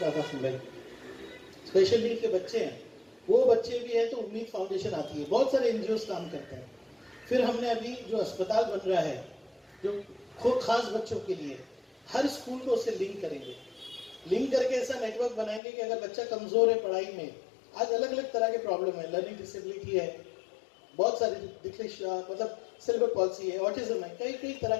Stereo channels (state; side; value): drops out; right; at 15.6 s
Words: पास में स्पेशल नीड के बच्चे हैं, वो बच्चे भी हैं तो उम्मीद फाउंडेशन आती है, बहुत सारे एनजीओ काम करते हैं। फिर हमने अभी जो अस्पताल बन रहा है जो खूब खास बच्चों के लिए, हर स्कूल को उससे लिंक करेंगे, लिंक करके ऐसा नेटवर्क बनाएंगे कि अगर बच्चा कमजोर है पढ़ाई में, आज अलग अलग तरह के प्रॉब्लम है, लर्निंग डिसेबिलिटी है, बहुत सारी डिस्लेक्सिया मतलब सेरेब्रल पॉल्सी है, ऑटिज्म है, कई कई तरह